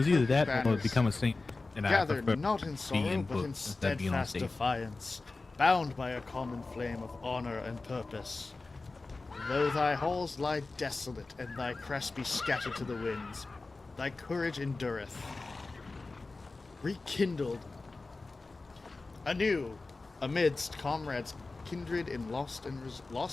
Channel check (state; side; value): quieter; right; 3.5 dB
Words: either that or banners, become a saint, and I gather prefer not in to be sorrow, in but in books instead of being on steadfast stage. defiance, bound by a common flame of honor and purpose. Though thy halls lie desolate, and thy crest be scattered to the winds, thy courage endureth. Rekindled anew amidst comrades kindred in loss